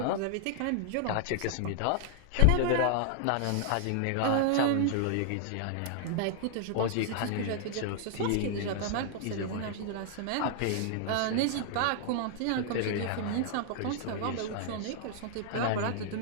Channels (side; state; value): both; different; correlation -0.01